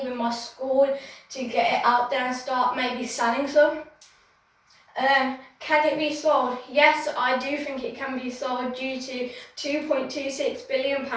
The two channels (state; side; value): identical; both; correlation 1.00